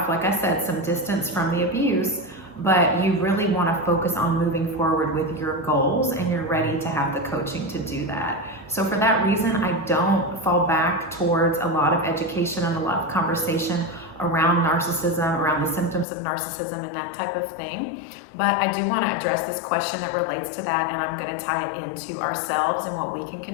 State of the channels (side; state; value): right; drops out; at 16.1 s